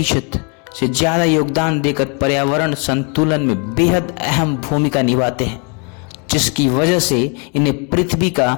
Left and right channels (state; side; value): quieter; right; 35.8 dB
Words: से ज्यादा योगदान देकर पर्यावरण संतुलन में बेहद अहम भूमिका निभाते हैं, जिसकी वजह से इन्हें पृथ्वी का